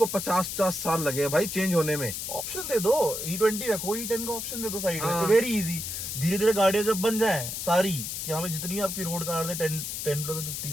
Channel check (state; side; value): noise; left; hiss, 5 dB below the sound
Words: 50-50 साल लगे भाई चेंज होने में। ऑप्शन दे दो, E20 रखो, E10 का ऑप्शन दे दो साइड में, हाँ। Very easy. धीरे धीरे गाड़ियां जब बन जाए सारी, कि यहाँ पे जितनी आपकी रोड कार्ड है 10 प्लस